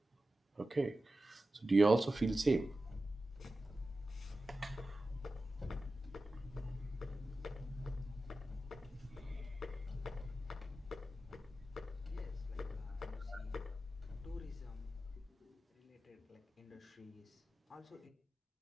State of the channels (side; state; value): both; normal; correlation 0.93